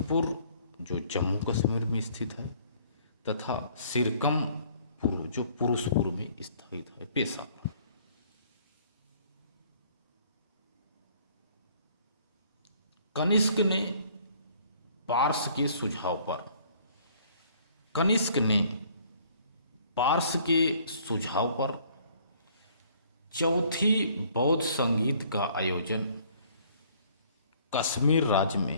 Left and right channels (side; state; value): both; inverted; correlation -0.59